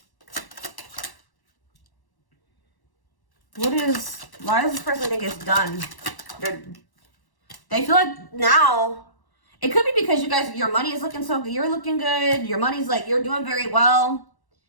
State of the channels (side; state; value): right; late; 1.1 ms